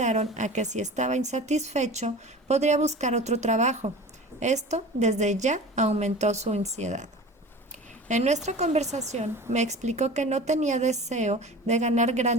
a que si estaba insatisfecho podría buscar otro trabajo. Esto desde ya aumentó su ansiedad. En nuestra conversación me explicó que no tenía deseo de ganar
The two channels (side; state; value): both; normal; correlation 0.37